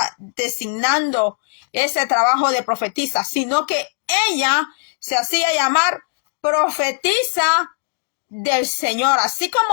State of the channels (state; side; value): silent; right; digital silence